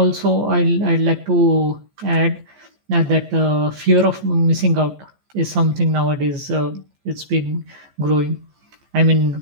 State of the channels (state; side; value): late; left; 14 ms